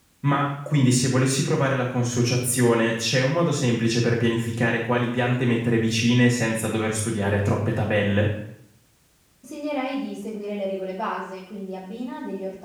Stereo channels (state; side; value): identical; both; correlation 1.00